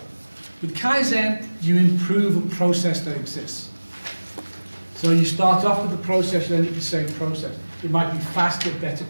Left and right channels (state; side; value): inverted; both; correlation -1.00